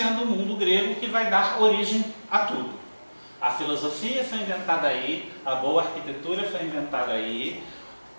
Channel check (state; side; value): inverted; both; correlation -1.00